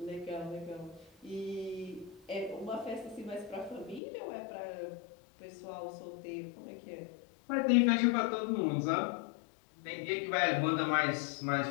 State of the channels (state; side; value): drops out; right; at 4.0 s